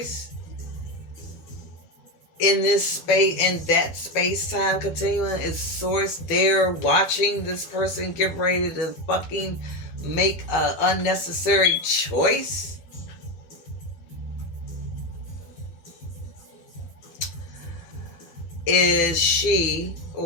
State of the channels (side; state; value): right; late; 12 ms